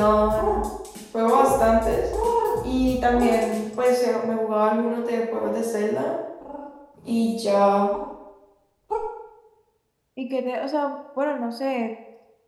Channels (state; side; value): identical; both; correlation 1.00